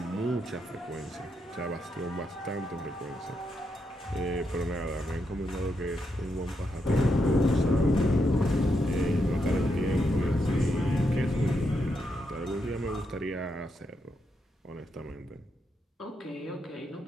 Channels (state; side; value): normal; both; correlation 0.82